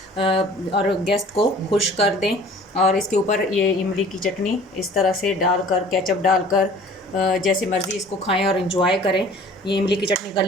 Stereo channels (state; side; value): normal; both; correlation 0.49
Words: और गेस्ट को खुश कर दें। और इसके ऊपर ये इमली की चटनी इस तरह से डालकर, केचप डालकर जैसे मर्ज़ी इसको खाएं और इन्जॉय करें। ये इमली की चटनी का